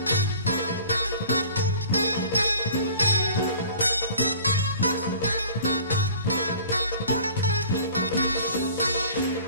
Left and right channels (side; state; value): both; inverted; correlation -0.47